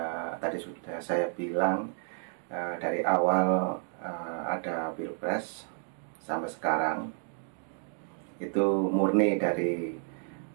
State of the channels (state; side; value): silent; left; 57 dB below the other